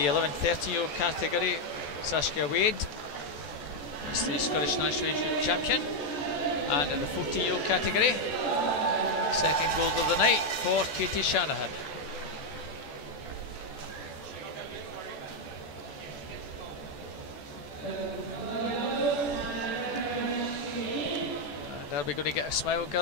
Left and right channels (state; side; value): late; right; 14 ms